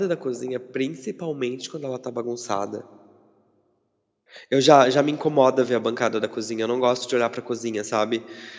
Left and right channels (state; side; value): identical; both; correlation 1.00